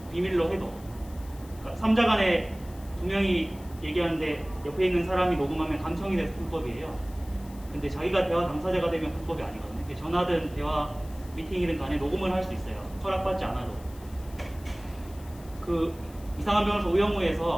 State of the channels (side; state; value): left; noise; hiss, 23 dB below the sound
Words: 비밀로 해도. 그러니까 3자 간에 두 명이 얘기하는데 옆에 있는 사람이 녹음하면 감청이 돼서 불법이에요. 근데 자기가 대화 당사자가 되면 불법이 아니거든요. 전화든 대화 미팅이든 간에 녹음을 할 수 있어요. 허락받지 않아도. 이상한 변호사